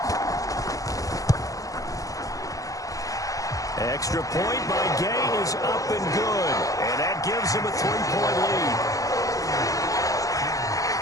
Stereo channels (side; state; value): right; late; 0.17 ms